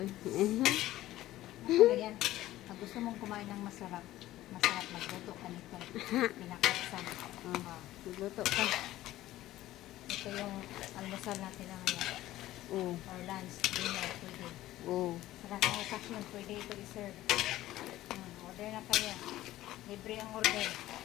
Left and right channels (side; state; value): right; quieter; 15.2 dB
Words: Ganyan. Pag gusto mong kumain ng masarap, magluto ka nito. Pinakuksan. Tigluto ka. Ito yung almusal natin na ngayon. Oh. Or lunch, dinner, pwede. Oh. Sa transaction, pwede ito i-serve. Order na kayo. Libre ang order.